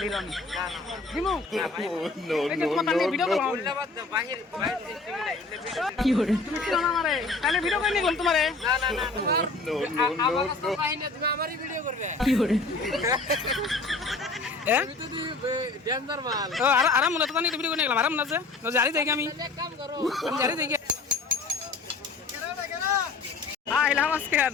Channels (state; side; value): quieter; right; 3.6 dB